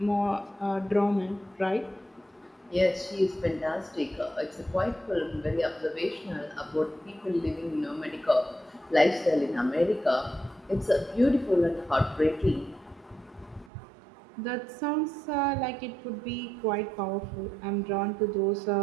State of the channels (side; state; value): left; drops out; at 13.7 s